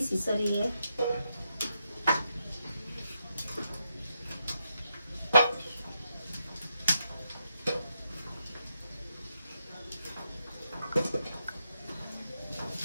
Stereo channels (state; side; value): inverted; both; correlation -0.82